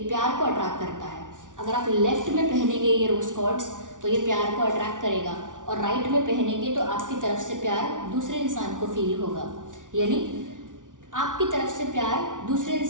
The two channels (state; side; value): late; left; 0.87 ms